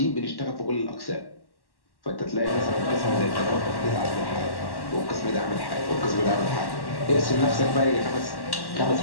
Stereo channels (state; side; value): late; right; 1.1 ms